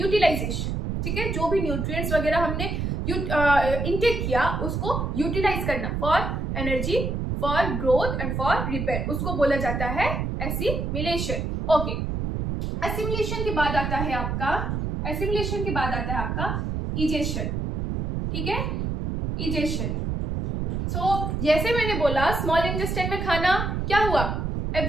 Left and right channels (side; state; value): right; noise; rumble, 2 dB below the sound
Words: ठीक है, जो भी न्यूट्रिएंट्स वगैरह हमने इंटेक किया, उसको यूटिलाइज करना for energy, for growth and for repair, उसको बोला जाता है एसिमिलेशन। ओके, एसिमिलेशन के बाद आता है आपका इजेशन। ठीक है, इजेशन। सो जैसे मैंने बोला, स्मॉल इंटेस्टाइन में खाना क्या हुआ,